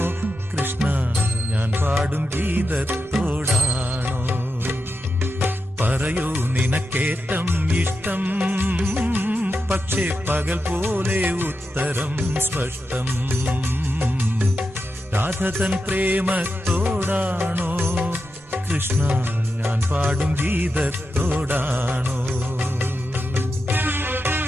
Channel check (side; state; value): right; noise; rumble, 27 dB below the sound